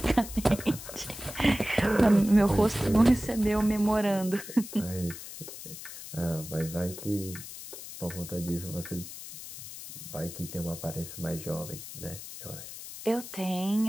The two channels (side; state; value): left; noise; hiss, 12 dB below the sound